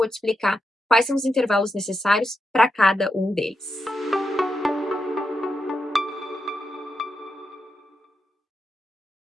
te explicar quais são os intervalos necessários para cada um deles.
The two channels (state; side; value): normal; both; correlation 0.86